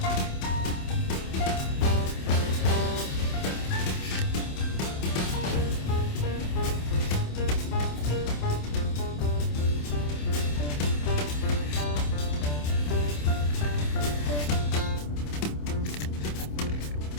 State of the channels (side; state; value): right; late; 27 ms